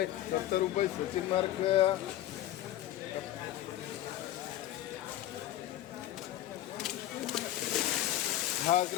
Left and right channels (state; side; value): quieter; right; 13.5 dB